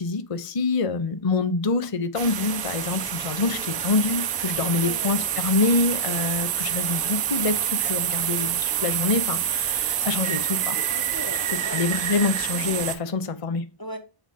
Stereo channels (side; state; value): right; late; 1.0 ms